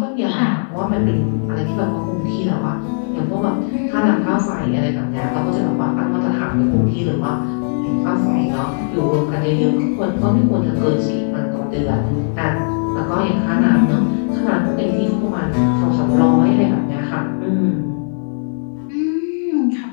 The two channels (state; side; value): silent; right; 67 dB below the other